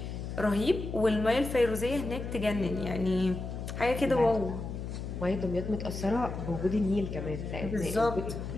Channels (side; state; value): left; noise; hum, 6 dB below the sound